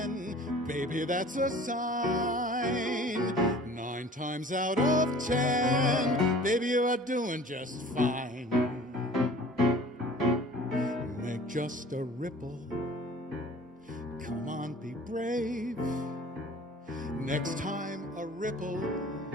baby, that's a sign. 9 times out of 10, baby, you are doing just fine. Make just a ripple. Come on, be brave. Next time a ripple.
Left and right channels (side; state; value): both; normal; correlation 0.46